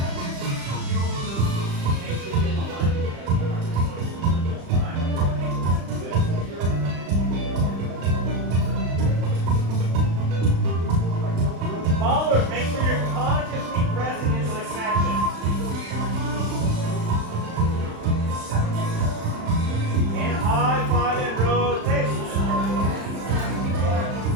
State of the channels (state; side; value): late; left; 35 ms